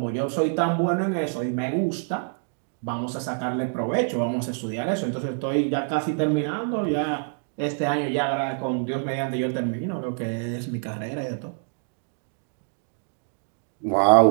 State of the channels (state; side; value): silent; left; 61 dB below the other